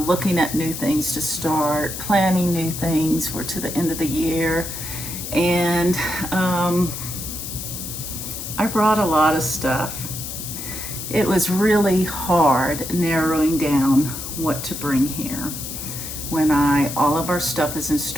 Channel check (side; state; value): left; noise; hiss, 7 dB below the sound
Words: at new things to start, planning new things for to the end of the year. And I brought a lot of stuff. It was really hard narrowing down what to bring here when all of our stuff is in